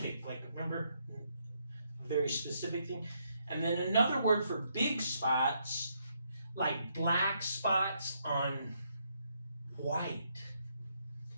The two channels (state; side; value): inverted; both; correlation -0.75